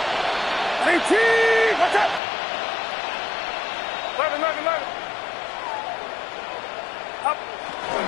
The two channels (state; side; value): drops out; right; at 2.2 s